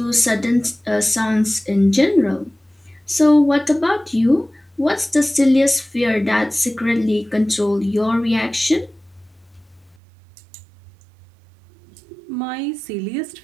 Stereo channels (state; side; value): drops out; left; at 10.0 s